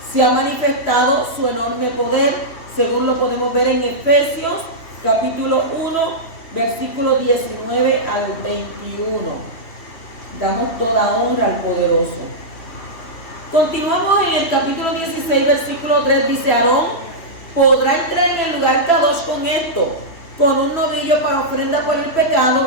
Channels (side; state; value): right; late; 3.3 ms